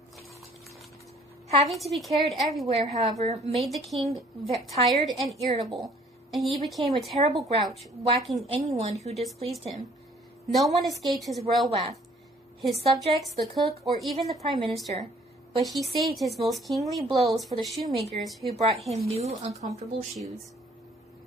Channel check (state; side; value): normal; both; correlation 0.58